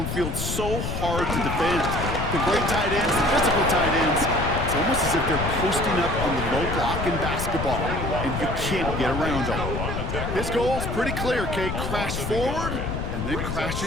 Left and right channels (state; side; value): noise; left; rumble, 3 dB below the sound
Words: so hard to defend. The great tight ends, the physical tight ends, it's almost as if they're posting up on the low block in basketball, and you can't get around them. His goal's pretty clear, Kate. Crash forward and then crash